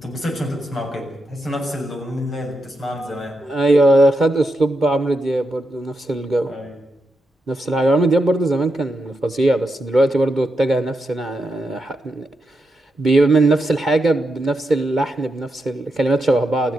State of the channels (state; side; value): normal; both; correlation 0.85